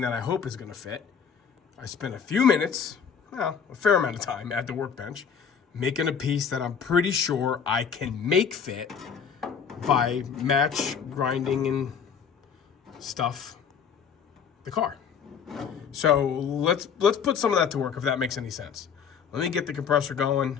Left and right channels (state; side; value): quieter; right; 6.9 dB